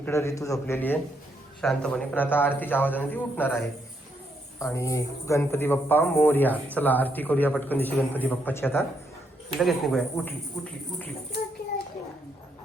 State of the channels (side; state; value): both; normal; correlation 0.76